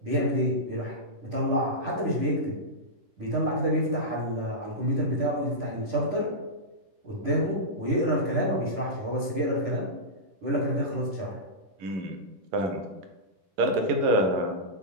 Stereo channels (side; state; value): left; late; 10 ms